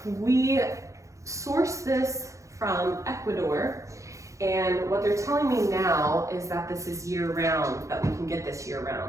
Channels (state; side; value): late; left; 0.15 ms